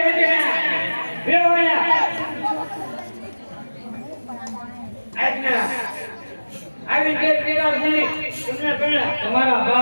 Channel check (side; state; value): both; inverted; correlation -1.00